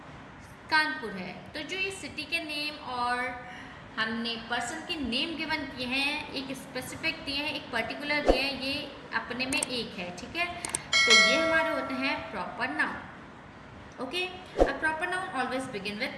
कानपुर है। तो जो ये सिटी के नेम और हमने पर्सन के नेम गिवन किए हैं, एक स्पेसिफिक दिए हैं, एक पर्टिकुलर दिए हैं, ये अपने में एक है, ठीक है। तो ये हमारे होते हैं proper noun. Okay, a proper noun always begin with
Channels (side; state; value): both; identical; correlation 1.00